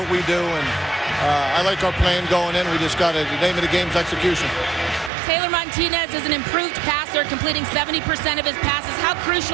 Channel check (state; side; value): drops out; left; at 5.1 s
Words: we do. And I like our plan going in. We just got to, the name of the game is execution. Taylor Martinez is an improved passer, completing 70% of his passes. How